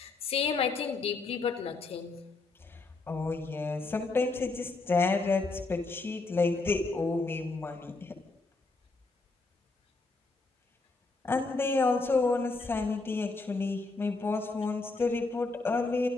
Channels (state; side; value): quieter; right; 3.6 dB